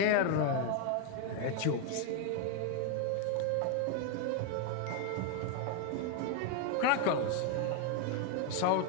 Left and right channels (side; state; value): both; different; correlation 0.01